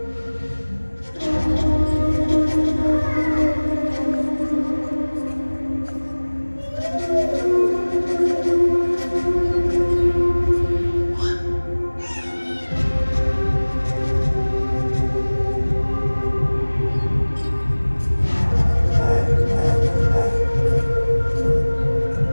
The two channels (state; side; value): inverted; both; correlation -1.00